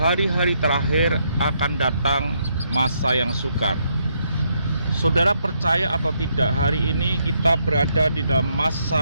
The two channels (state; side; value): inverted; both; correlation -0.75